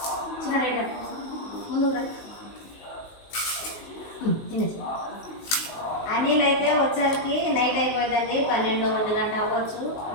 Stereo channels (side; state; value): right; late; 19 ms